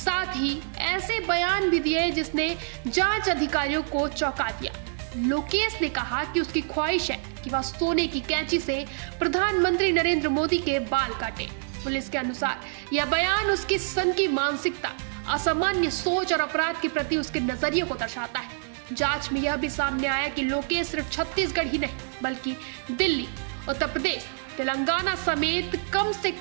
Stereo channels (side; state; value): left; silent; 60 dB below the other